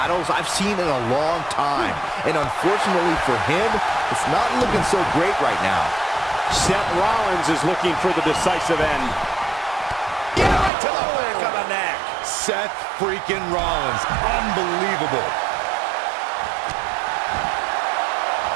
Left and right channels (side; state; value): left; drops out; at 10.7 s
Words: I've seen in a long time. And unfortunately for him, it's not looking so great right now. Seth Rollins is looking for the decisive end. Get right to the back of the neck. Seth freaking Rollins. Unbelievable.